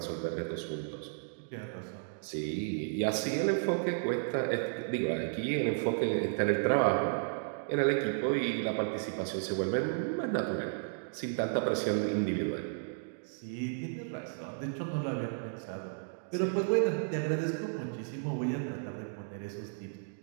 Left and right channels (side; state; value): left; silent; digital silence